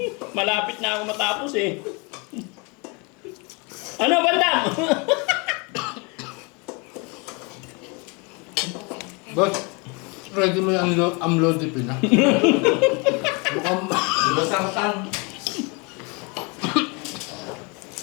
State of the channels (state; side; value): quieter; right; 28.9 dB